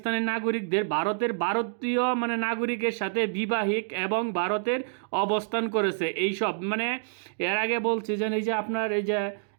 নাগরিকদের ভারতীয় মানে নাগরিকের সাথে বিবাহিক এবং ভারতের অবস্থান করেছে। এইসব মানে এর আগে বলছে যে এই যে আপনার এই যে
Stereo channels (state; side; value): silent; left; digital silence